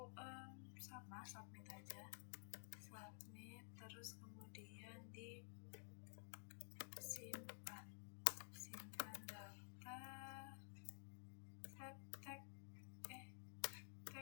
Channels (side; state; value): right; silent; digital silence